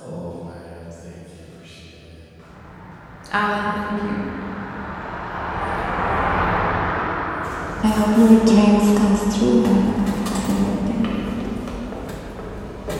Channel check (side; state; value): both; identical; correlation 1.00